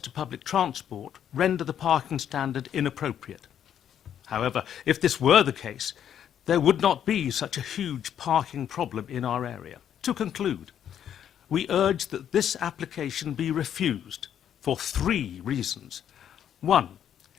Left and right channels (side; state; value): right; quieter; 9.6 dB